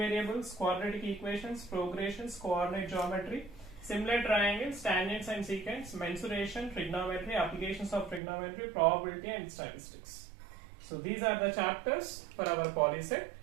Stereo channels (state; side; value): drops out; left; at 8.2 s